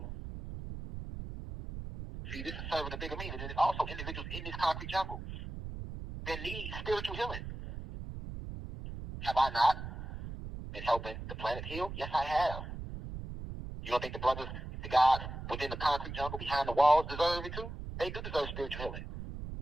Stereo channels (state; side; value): noise; right; rumble, 8 dB below the sound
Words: See, this is serving a bigger meaning. There's also individuals in this concrete jungle that need spiritual healing. Have I not been helping the planet heal? Yes, I have. You don't think the brothers, the gods within the concrete jungle behind the walls deserve it too? They do deserve spiritual healing.